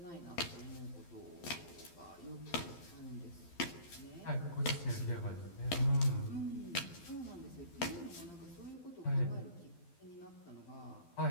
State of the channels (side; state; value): right; late; 12 ms